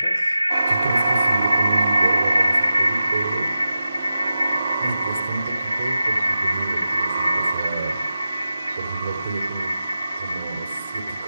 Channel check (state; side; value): inverted; both; correlation -0.92